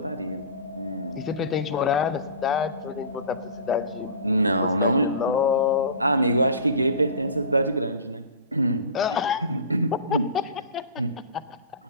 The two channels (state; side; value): inverted; both; correlation -0.36